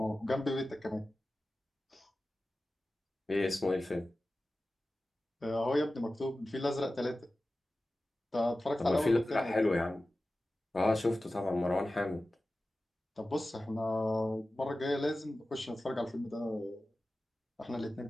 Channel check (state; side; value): normal; both; correlation 0.95